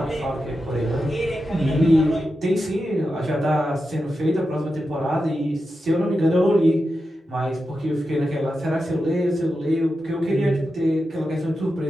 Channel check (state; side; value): normal; both; correlation 0.90